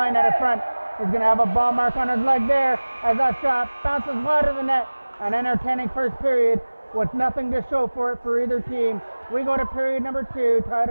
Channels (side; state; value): both; inverted; correlation -1.00